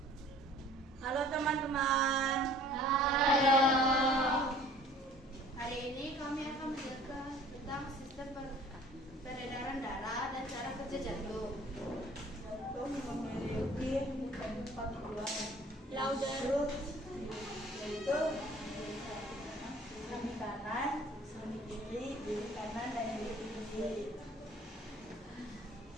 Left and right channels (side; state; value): both; normal; correlation 0.51